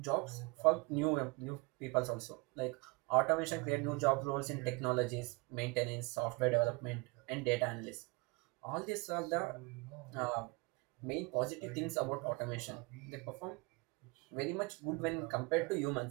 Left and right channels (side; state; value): left; quieter; 27.7 dB